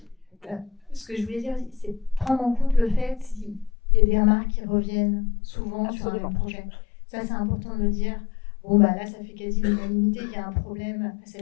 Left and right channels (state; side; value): drops out; right; at 3.7 s